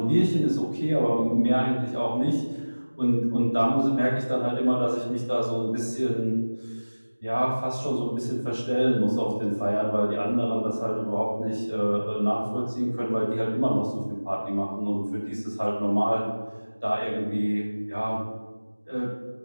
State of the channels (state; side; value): inverted; both; correlation -1.00